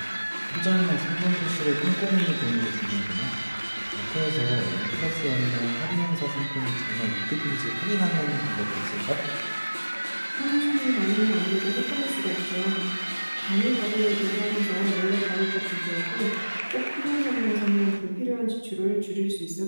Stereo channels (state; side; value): inverted; both; correlation -1.00